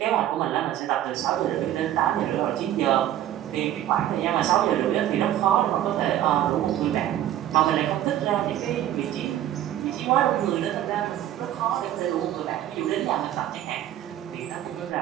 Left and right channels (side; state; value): left; quieter; 12.3 dB